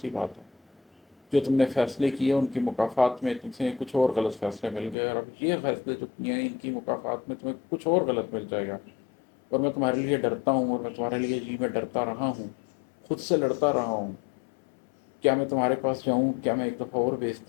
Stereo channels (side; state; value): right; drops out; at 5.0 s